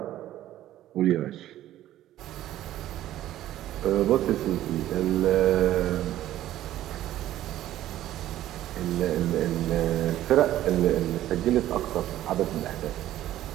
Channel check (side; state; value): left; quieter; 13.4 dB